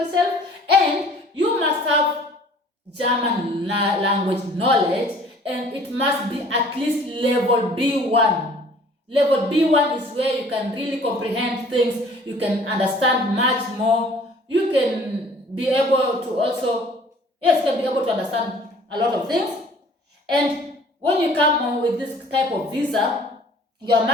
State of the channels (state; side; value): normal; both; correlation 0.52